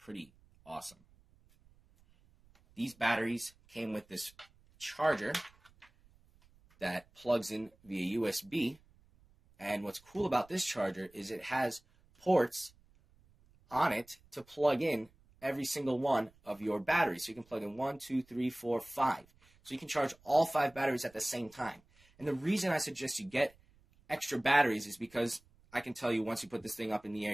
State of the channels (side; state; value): right; noise; rumble, 30 dB below the sound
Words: awesome. These batteries came with this charger that plugs in via USB. And what's cool about this charger is it has ports on it to plug in every single one of your batteries. So you can plug in 1, 2, 3, 4, 5. So you can charge all 5 batteries at the same time. And the reason I suggest you get extra batteries is because I can tell you once you put this thing up in the air,